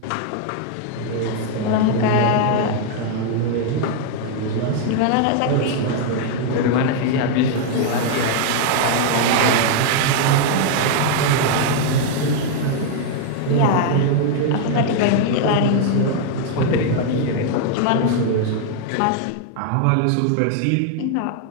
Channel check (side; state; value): both; different; correlation 0.00